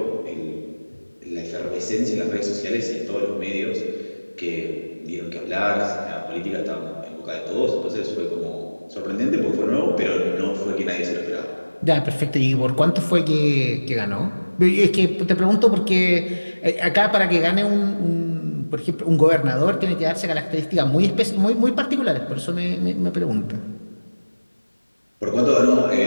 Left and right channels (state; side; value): inverted; both; correlation -1.00